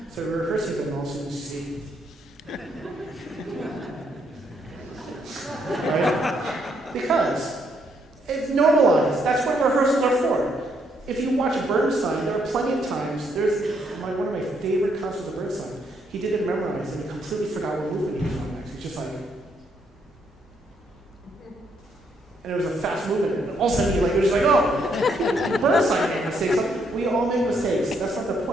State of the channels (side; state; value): both; normal; correlation 0.73